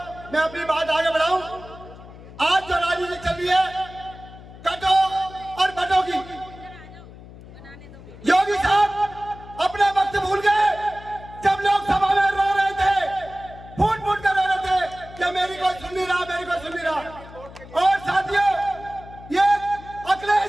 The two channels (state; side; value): noise; left; hum, 18 dB below the sound